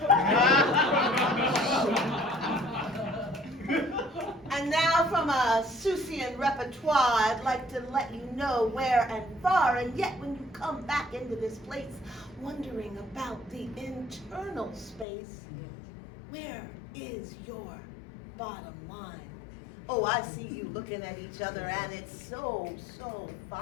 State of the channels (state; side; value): drops out; right; at 15.1 s